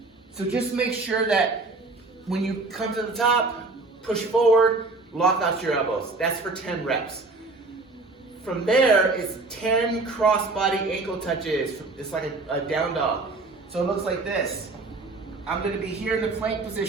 So just make sure that when you come to the top, push forward, lock out your elbows. That's for 10 reps. From there is 10 cross-body ankle touches. It's like a down dog. So it looks like this. I'm gonna be here in the plank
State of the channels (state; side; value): quieter; left; 3.5 dB